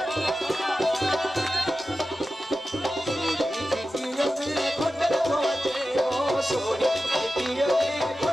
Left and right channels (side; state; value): both; normal; correlation 0.93